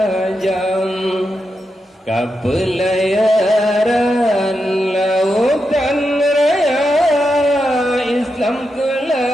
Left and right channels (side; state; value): both; normal; correlation 0.86